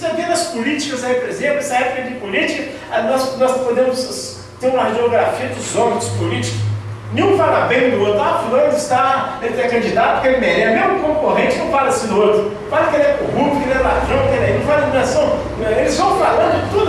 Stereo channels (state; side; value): identical; both; correlation 1.00